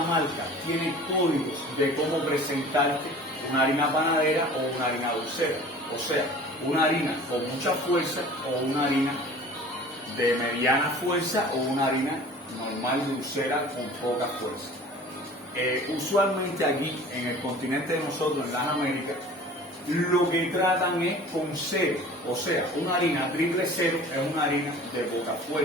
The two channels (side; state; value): both; normal; correlation 0.44